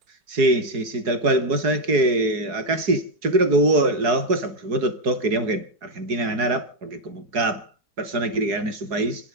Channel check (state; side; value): late; left; 4.7 ms